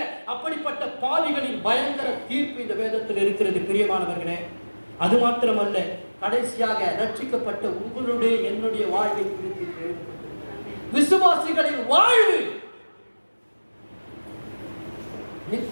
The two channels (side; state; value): both; inverted; correlation -1.00